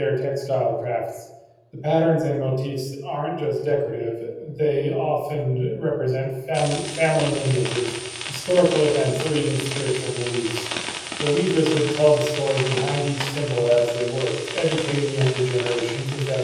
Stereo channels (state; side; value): identical; both; correlation 1.00